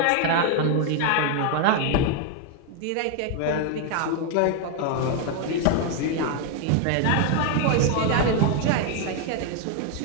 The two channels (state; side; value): different; both; correlation 0.01